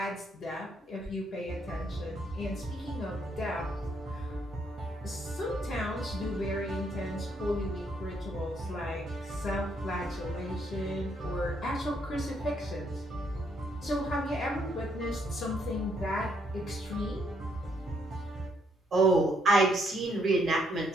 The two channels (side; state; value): both; normal; correlation 0.72